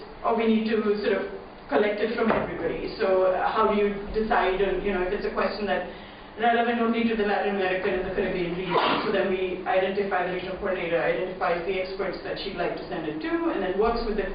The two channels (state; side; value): identical; both; correlation 1.00